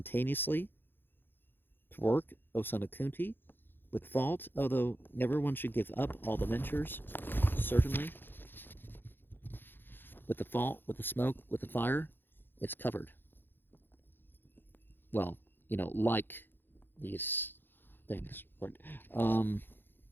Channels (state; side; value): late; right; 0.099 ms